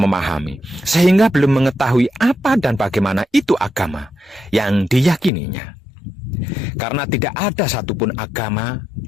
sehingga belum mengetahui apa dan bagaimana itu agama yang diyakininya. Karena tidak ada satupun agama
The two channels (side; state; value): right; drops out; at 5.3 s